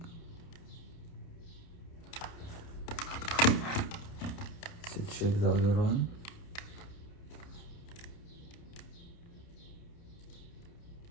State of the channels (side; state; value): right; late; 29 ms